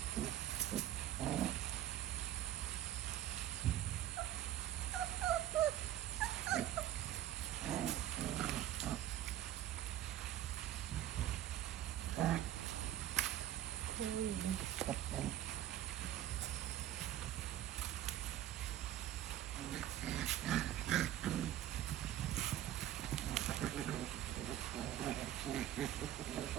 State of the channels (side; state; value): left; quieter; 12.3 dB